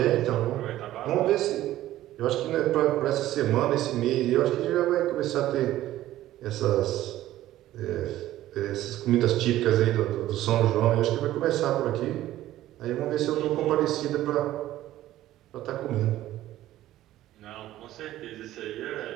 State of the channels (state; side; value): quieter; left; 14.3 dB